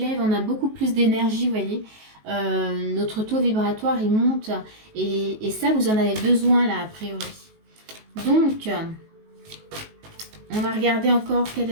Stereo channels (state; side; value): late; left; 19 ms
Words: on a beaucoup plus d'énergie, vous voyez. Notre taux vibratoire, il monte. Et ça, vous en avez besoin, là, a priori. Donc, on va regarder encore quel